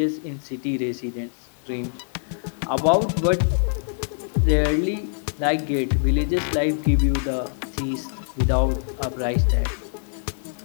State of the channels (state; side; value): silent; right; digital silence